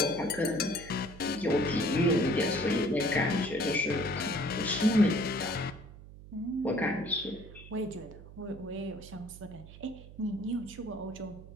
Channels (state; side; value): noise; right; hum, 17 dB below the sound